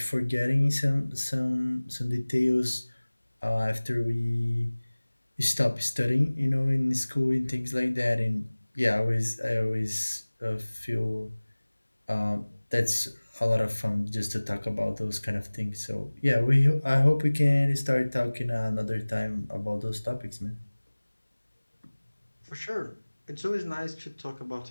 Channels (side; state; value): both; inverted; correlation -1.00